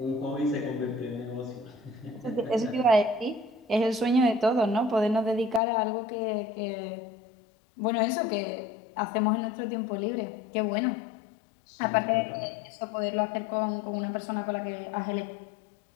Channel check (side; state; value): right; drops out; at 5.6 s